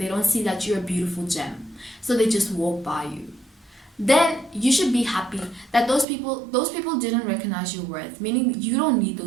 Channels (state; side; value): drops out; left; at 6.1 s